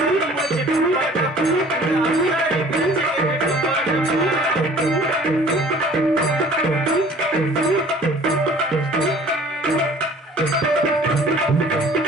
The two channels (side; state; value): both; normal; correlation 0.50